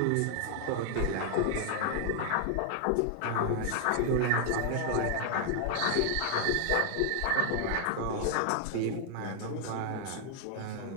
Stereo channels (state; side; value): different; both; correlation 0.00